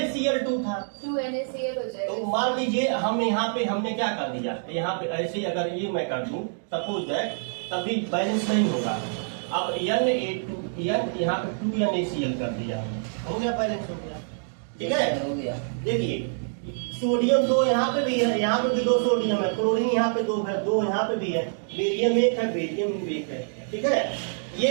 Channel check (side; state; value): left; silent; digital silence